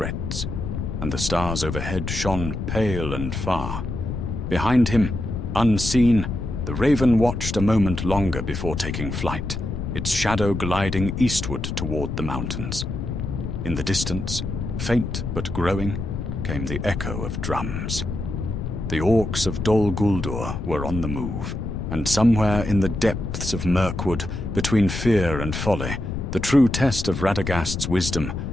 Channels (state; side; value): noise; left; rumble, 4 dB below the sound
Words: and the stars overhead shone pale and far. Behind him, unseen, the raven watched a moment longer before taking flight, its shadow gliding eastward toward the mountains. In the distance, faint but growing, came the echo of drums. The orcs of Dol Guldur were on the move, And somewhere in the depths of Mirkwood, between fear and folly, the true test of Radagast's wisdom